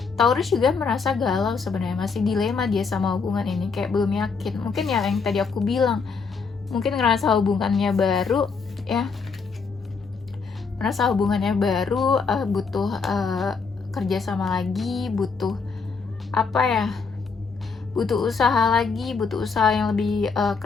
Taurus juga merasa galau sebenarnya, masih dilema dia sama hubungan ini, kayak belum yakin. Mungkin ya yang tadi aku bilang, mungkin ngerasa hubungannya baru ya, merasa hubungannya baru, butuh kerja sama lagi, butuh apa ya, butuh usaha lagi, butuh usaha yang lebih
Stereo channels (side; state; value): right; quieter; 5.1 dB